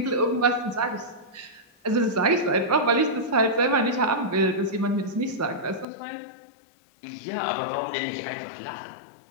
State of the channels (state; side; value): drops out; right; at 5.9 s